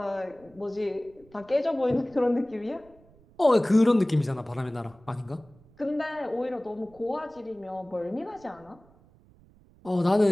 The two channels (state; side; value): noise; right; rumble, 28 dB below the sound